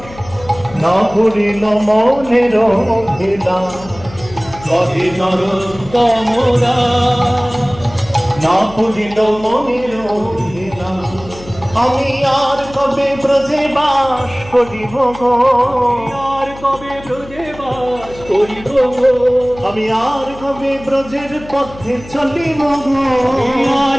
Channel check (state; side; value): noise; left; hum, 17 dB below the sound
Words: না করিল মনের অভিলাষ। কহে নরোত্তম দাস না করিল মনের অভিলাষ। আমি আর কবে ব্রজে বাস করিব গো, আর কবে ব্রজে বাস করিব গো। আমি আর কবে ব্রজের পথে চলিব গো,